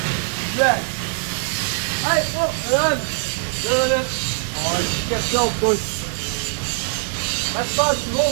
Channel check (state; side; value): silent; left; digital silence